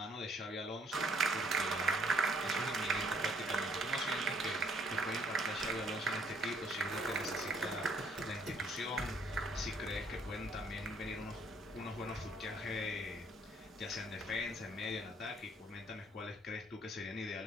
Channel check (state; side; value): normal; both; correlation 0.64